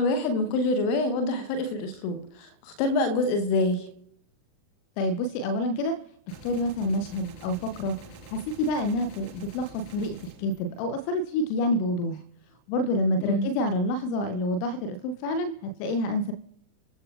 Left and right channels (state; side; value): late; right; 39 ms